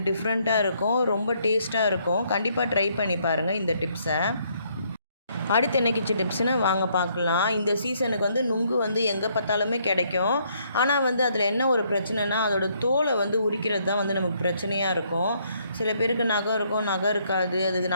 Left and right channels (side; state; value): both; inverted; correlation -0.70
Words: டிஃப்ரெண்ட்டாக இருக்கும், ரொம்ப டேஸ்ட்டாக இருக்கும். கண்டிப்பாக ட்ரை பண்ணி பாருங்கள் இந்த டிப்ஸை. அடுத்து என்ன கிச்சன் டிப்ஸ்னு வாங்க பார்க்கலாம். இந்த சீசனுக்கு வந்து நுங்கு வந்து எங்கே பார்த்தாலுமே கிடைக்கும். ஆனால் வந்து அதில் என்ன ஒரு பிரச்சனைனா அதோட தோலை வந்து உரிக்கிறது தான் வந்து நமக்கு பிரச்சனையாக இருக்கும். சில பேருக்கு நகம் இருக்கும், நகம் இருக்காது, அதுக்கு